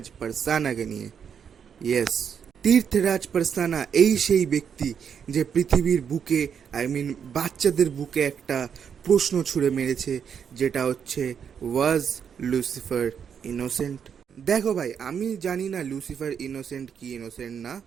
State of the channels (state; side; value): quieter; left; 7.5 dB